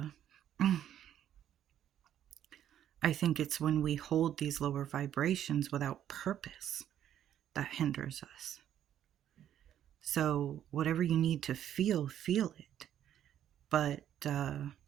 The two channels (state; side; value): quieter; left; 10.6 dB